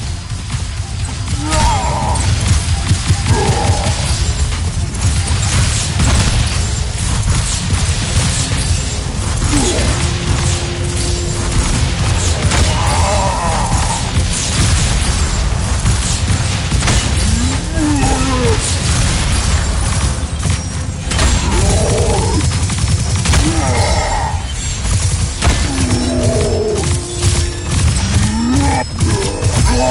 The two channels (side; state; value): both; identical; correlation 1.00